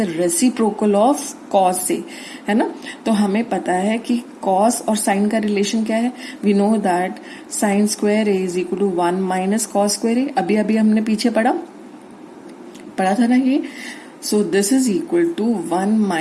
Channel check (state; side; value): identical; both; correlation 1.00